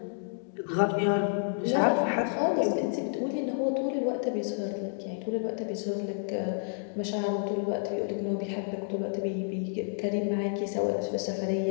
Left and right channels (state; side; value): silent; right; digital silence